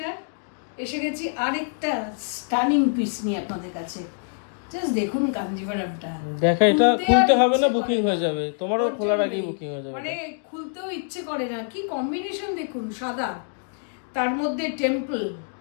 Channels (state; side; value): silent; right; digital silence